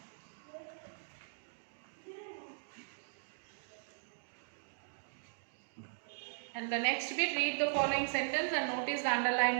And the next bit, read the following sentence and notice the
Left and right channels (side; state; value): left; silent; digital silence